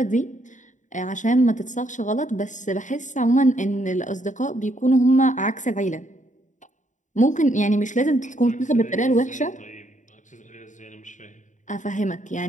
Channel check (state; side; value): late; right; 0.36 ms